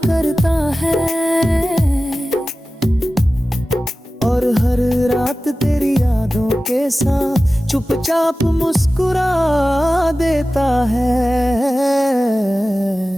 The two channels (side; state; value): both; normal; correlation 0.96